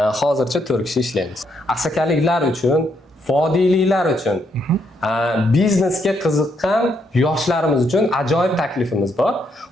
Hozircha 4 kishi ishlaymiz. Asakaliklar uchun, vodiyliklar uchun, biznesga qiziqqan yoshlarimiz uchun ajoyib taklifimiz bor.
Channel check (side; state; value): both; normal; correlation 0.75